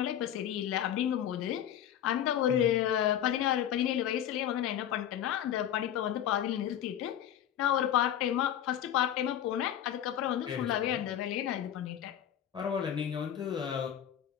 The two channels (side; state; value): right; quieter; 10.5 dB